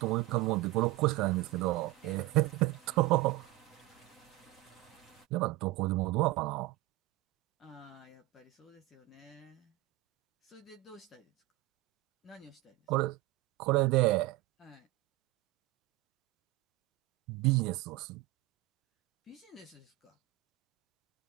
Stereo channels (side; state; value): left; quieter; 19.0 dB